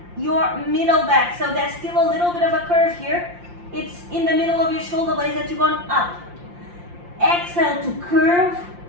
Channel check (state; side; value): late; left; 5.7 ms